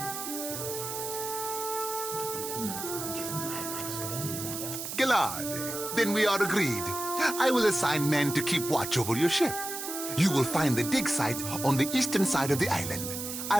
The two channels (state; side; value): noise; right; hiss, 6 dB below the sound